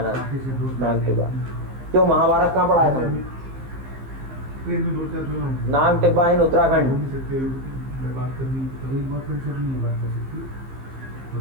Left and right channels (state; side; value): late; left; 15 ms